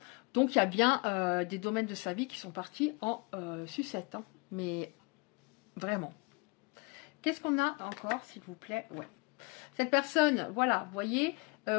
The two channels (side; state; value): right; quieter; 31.0 dB